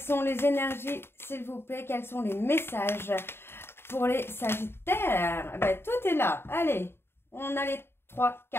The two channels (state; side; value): late; right; 0.11 ms